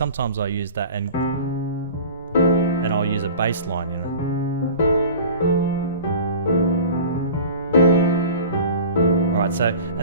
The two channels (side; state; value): both; inverted; correlation -0.40